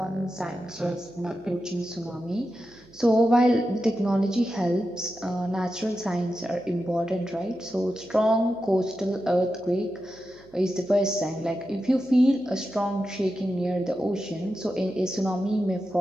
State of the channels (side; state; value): right; noise; hum, 26 dB below the sound